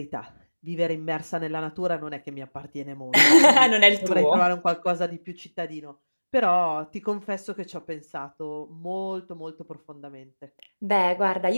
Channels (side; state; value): both; inverted; correlation -1.00